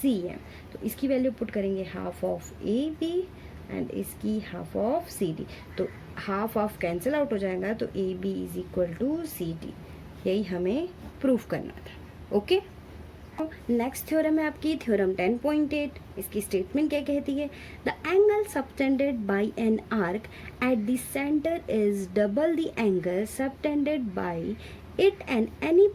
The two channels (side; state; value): both; identical; correlation 1.00